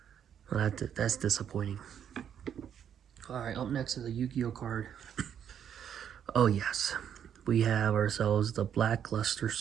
Well, that's disappointing. Alright, up next is a Yu-Gi-Oh card. Oh yes. We have ourselves the Blackluster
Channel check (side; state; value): left; quieter; 8.9 dB